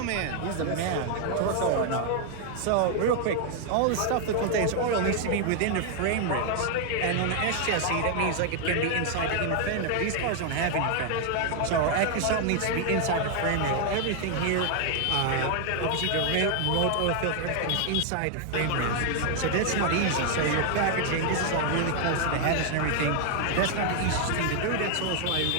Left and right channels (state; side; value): different; both; correlation 0.00